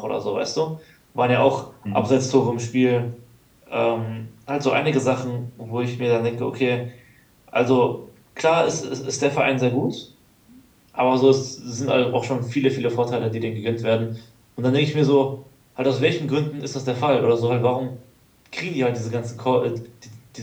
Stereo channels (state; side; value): identical; both; correlation 1.00